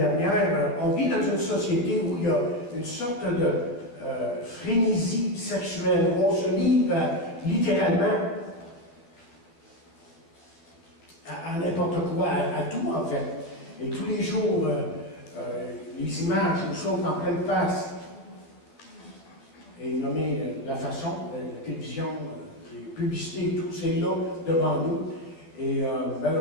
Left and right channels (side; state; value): right; late; 12 ms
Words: on vit dans une société où il y a une sorte de frénésie sexuelle, où on se livre littéralement à n'importe quoi, à tout en fait. Et tous les jours, les images nous sautent en pleine face. Et nommer la façon, la télévision, les publicités et tout, c'est là devant nous. Et